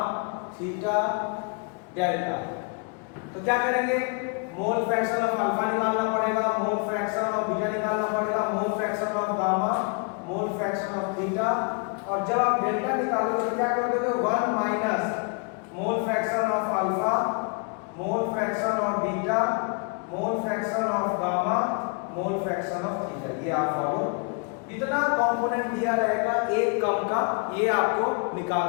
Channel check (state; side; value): quieter; right; 35.5 dB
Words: theta, delta. तो क्या करेंगे, मोल फ्रैक्शन ऑफ अल्फा निकालना पड़ेगा, मोल फ्रैक्शन ऑफ बीटा निकालना पड़ेगा, मोल fraction of gamma, mole fraction of theta. और जब आप डेल्टा निकालोगे तो क्या कर दोगे 1 minus mole fraction of alpha, mole fraction of beta, mole fraction of gamma, mole fraction of theta. ये आप फॉलो, जितना कंपोनेंट दिया रहेगा एक कम का ये आपको